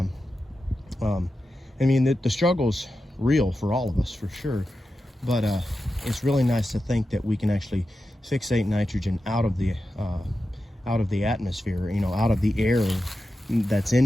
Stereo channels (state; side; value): normal; both; correlation 0.91